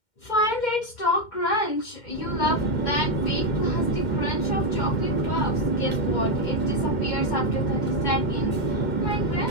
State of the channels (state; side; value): late; right; 2.1 ms